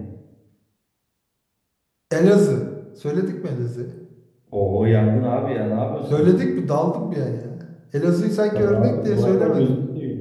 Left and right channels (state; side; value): identical; both; correlation 1.00